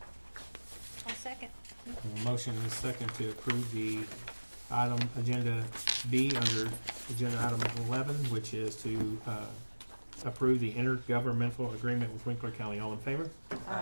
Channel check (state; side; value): inverted; both; correlation -1.00